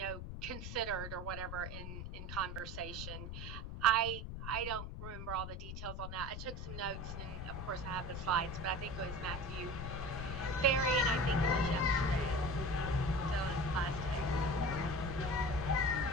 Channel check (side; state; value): left; noise; rumble, 7 dB below the sound